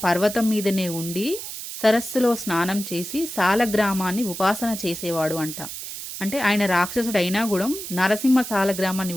పర్వతం మీదనే ఉండి సరస్సులో స్నానం చేసి సాలగ్రామాన్ని ఉపాసన చేసేవాడు అంట. అంటే ఆయన రాక్షసుడు అయినా కూడా నరసింహ సాలగ్రామాన్ని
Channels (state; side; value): noise; right; hiss, 9 dB below the sound